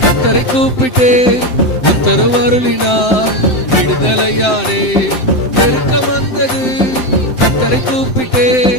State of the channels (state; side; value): late; right; 7.8 ms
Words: கர்த்தரை கூப்பிட்டே உத்தரவு அருளினார் விடுதலையானே. நெருக்கம் வந்தது கர்த்தரை கூப்பிட்டே